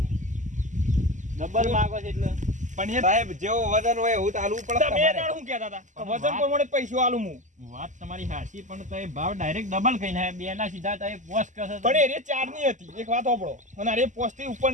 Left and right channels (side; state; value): left; late; 0.36 ms